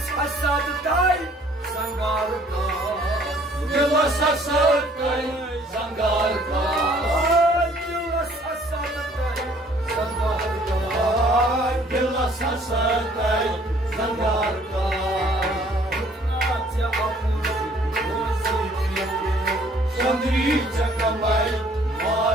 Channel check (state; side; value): normal; both; correlation 0.58